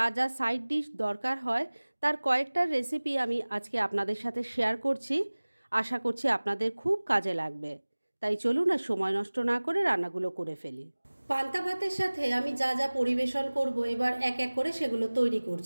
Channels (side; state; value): both; inverted; correlation -1.00